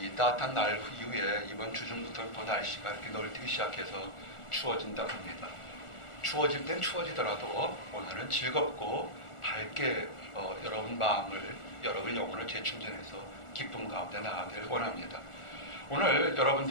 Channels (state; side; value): late; right; 1.4 ms